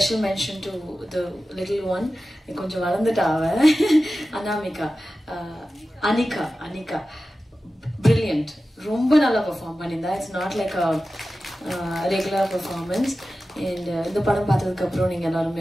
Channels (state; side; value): normal; both; correlation 0.94